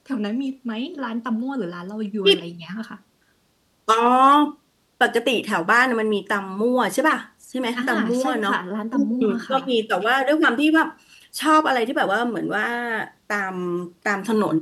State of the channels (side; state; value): both; identical; correlation 1.00